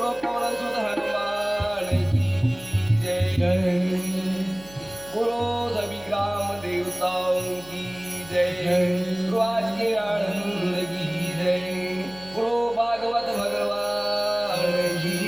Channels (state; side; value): noise; right; hum, 22 dB below the sound